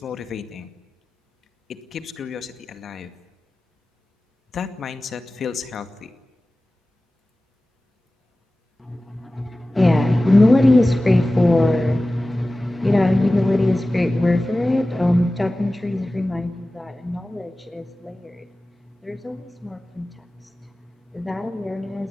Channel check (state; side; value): normal; both; correlation 0.96